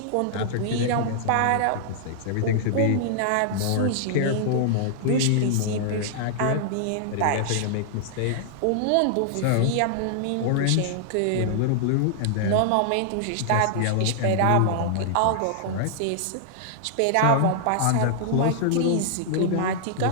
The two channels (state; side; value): different; both; correlation -0.01